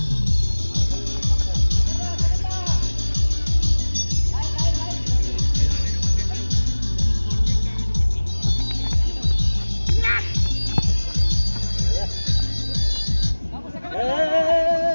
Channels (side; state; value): both; inverted; correlation -1.00